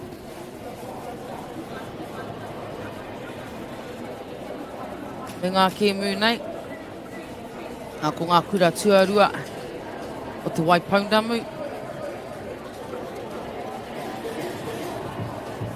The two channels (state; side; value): identical; both; correlation 1.00